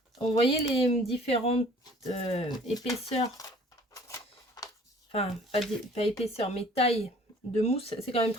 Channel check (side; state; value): both; normal; correlation 0.53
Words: Vous voyez les différentes épaisseurs, enfin pas épaisseur mais taille de mousse, c'est quand même